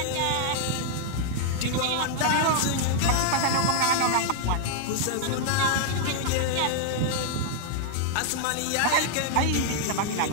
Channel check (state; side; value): different; both; correlation -0.01